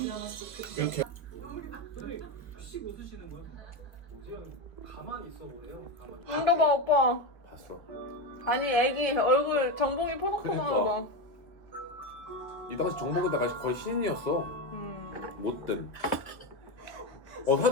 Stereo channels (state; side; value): late; right; 1.4 ms